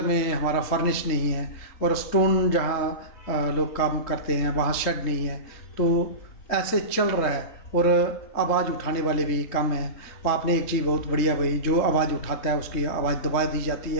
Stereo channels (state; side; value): late; right; 3.7 ms